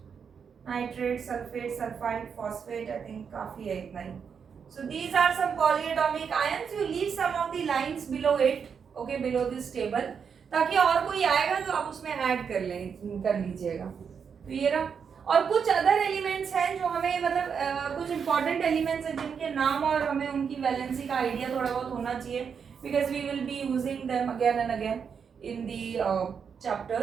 Nitrate, sulfate, sulfide, phosphate, I think काफी है इतना ही. So these are some polyatomic ions. You leave some of the lines below it, okay, below this table, ताकि और कोई आएगा तो आप उसमें ऐड कर लीजिएगा. तो ये रहा. और कुछ अदर एलिमेंट्स हैं जो हमें मतलब कुछ इंपॉर्टेंट एलिमेंट्स हैं जिनके नाम और हमें उनकी वैलेंसी का आइडिया थोड़ा बहुत होना चाहिए, because we will be using them again and again in the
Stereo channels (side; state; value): left; quieter; 6.6 dB